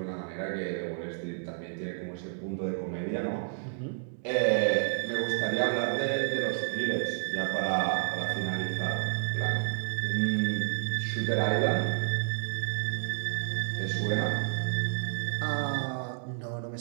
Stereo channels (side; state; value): left; silent; digital silence